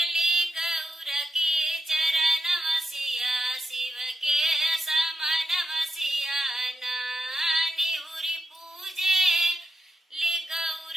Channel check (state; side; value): normal; both; correlation 0.86